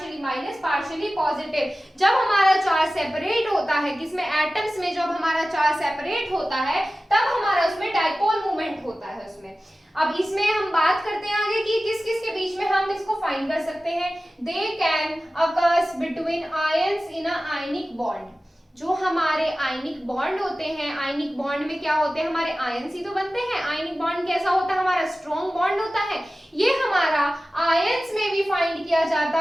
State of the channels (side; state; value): both; normal; correlation 0.96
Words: minus partially positive. जब हमारा चार्ज सेपरेट होता है, किसमें, एटम्स में, जब हमारा चार्ज सेपरेट होता है तब हमारा उसमें डाइपोल मूवमेंट होता है उसमें। अब इसमें हम बात करते हैं आगे कि किस किस के बीच में हम इसको फाइंड कर सकते हैं। They can occurs between ions in a ionic bond. जो हमारे आयनिक बॉन्ड होते हैं, आयनिक बॉन्ड में क्या होते हैं, हमारे आयंस ही तो बनते हैं। आयनिक बॉन्ड कैसा होता है, हमारा स्ट्रॉन्ग बॉन्ड होता है। ये हमारा आयंस में भी फाइंड किया जाता